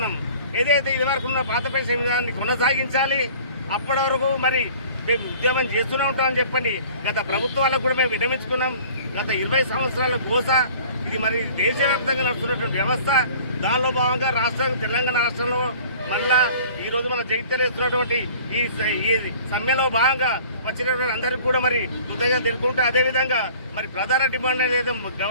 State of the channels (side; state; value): both; inverted; correlation -0.48